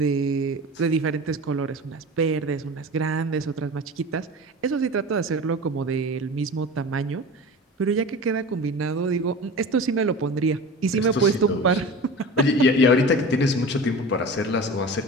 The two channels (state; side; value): normal; both; correlation 0.34